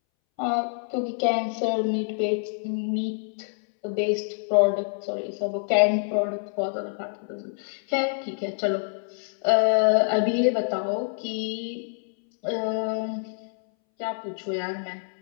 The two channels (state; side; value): silent; right; 61 dB below the other